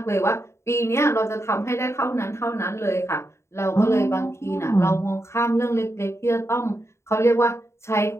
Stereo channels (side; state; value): right; late; 0.13 ms